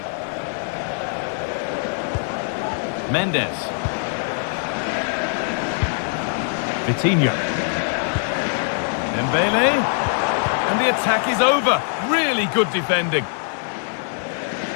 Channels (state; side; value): silent; right; 64 dB below the other